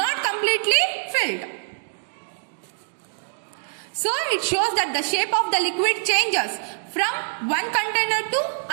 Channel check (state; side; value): silent; left; digital silence